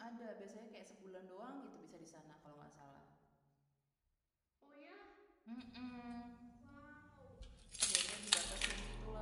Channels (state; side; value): identical; both; correlation 1.00